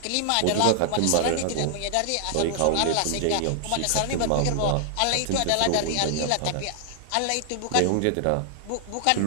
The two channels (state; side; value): different; both; correlation 0.00